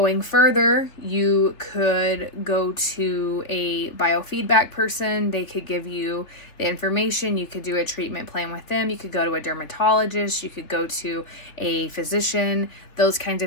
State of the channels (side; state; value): right; late; 3.5 ms